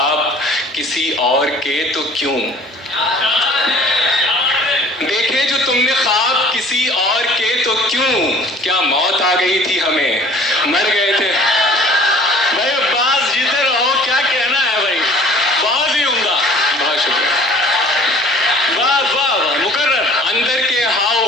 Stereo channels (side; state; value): both; normal; correlation 0.49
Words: کسی اور کے تو کیوں. دیکھے جو تم نے خواب کسی اور کے تو کیوں. کیا موت آ گئی تھی ہمیں, مر گئے تھے. بھائی عباس جیتے رہو. کیا کہنا ہے بھائی. بہت ہی عمدہ. بہت شکریہ. واہ واہ واہ. مقرر. اندر کے ہاؤ